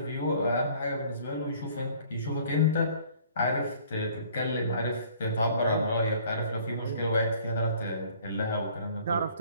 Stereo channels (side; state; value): both; inverted; correlation -0.55